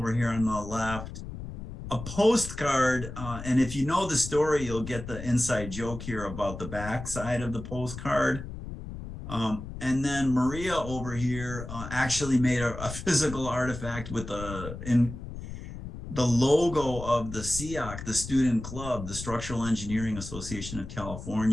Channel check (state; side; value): noise; left; rumble, 10 dB below the sound